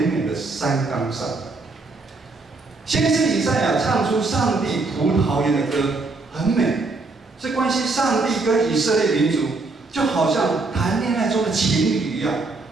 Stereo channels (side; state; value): left; quieter; 3.6 dB